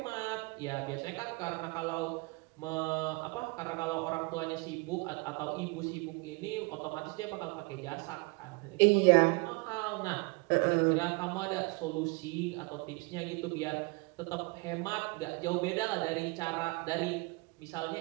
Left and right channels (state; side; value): quieter; left; 28.4 dB